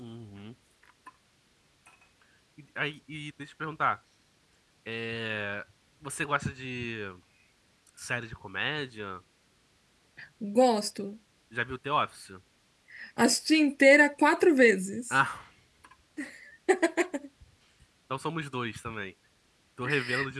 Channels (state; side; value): identical; both; correlation 1.00